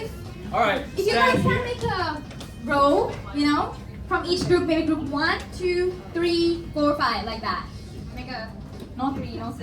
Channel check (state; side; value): identical; both; correlation 1.00